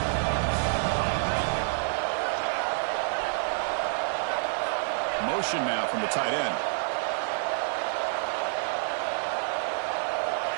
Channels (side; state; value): left; silent; 59 dB below the other